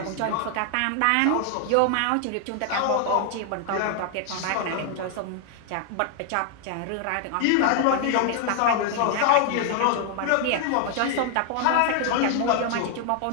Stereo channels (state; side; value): different; both; correlation 0.00